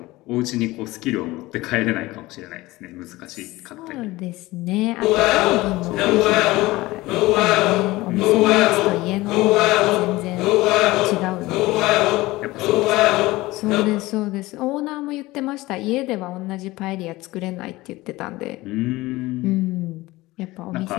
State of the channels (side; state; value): right; quieter; 19.4 dB